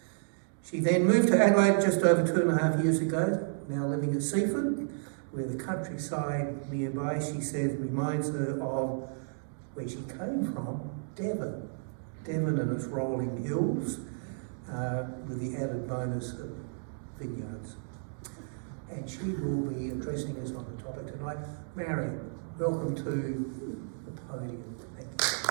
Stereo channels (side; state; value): left; silent; digital silence